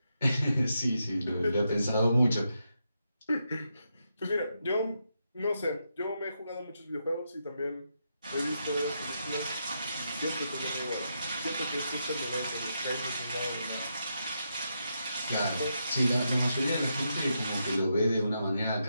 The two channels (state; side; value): inverted; both; correlation -0.83